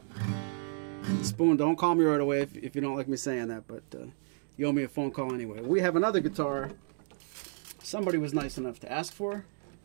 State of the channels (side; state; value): left; silent; 57 dB below the other